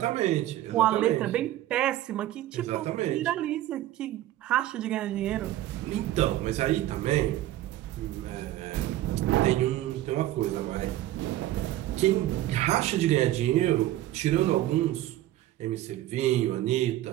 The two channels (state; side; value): quieter; left; 14.4 dB